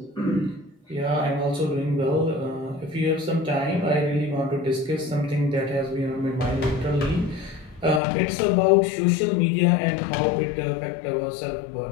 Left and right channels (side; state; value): right; drops out; at 8.0 s